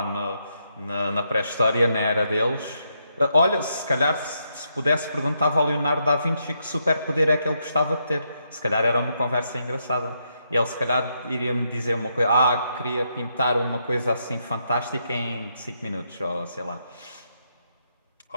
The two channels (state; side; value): inverted; both; correlation -0.79